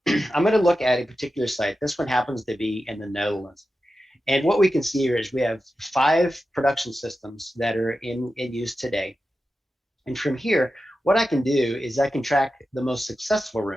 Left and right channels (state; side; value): normal; both; correlation 0.92